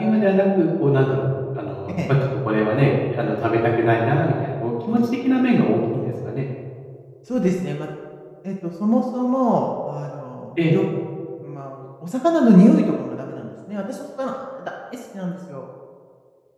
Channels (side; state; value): both; identical; correlation 1.00